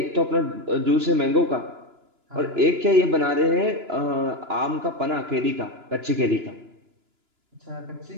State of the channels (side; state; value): left; late; 2.9 ms